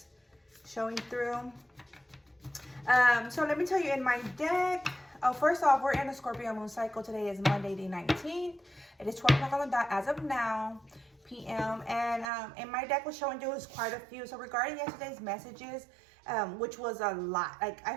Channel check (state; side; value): drops out; left; at 12.3 s